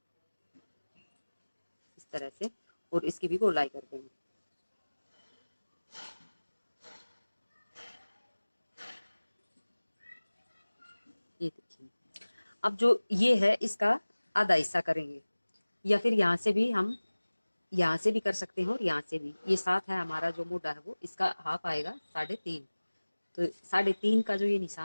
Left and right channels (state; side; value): inverted; both; correlation -1.00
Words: इस तरह से, और इसकी भी गोलाई कर देंगे। ये देखिए, अब जो ये है इसका आधा हिस्सा करेंगे, या फिर यहाँ से भी हम यहाँ से भी कर सकते हैं और यहाँ से भी। ये 7 है हमारा जो मोटा है वो, इसका हाफ आएगा 3.5। तो 3.5 का जो ये